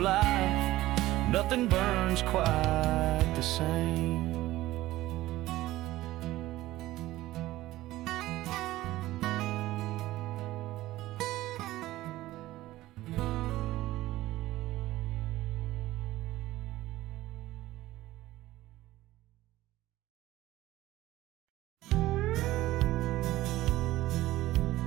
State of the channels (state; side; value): quieter; left; 16.4 dB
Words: nothing burns quite the same.